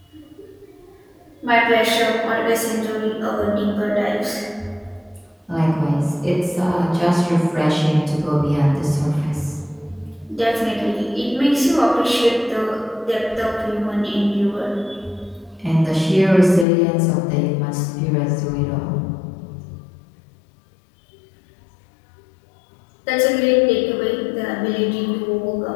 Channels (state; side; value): drops out; right; at 16.7 s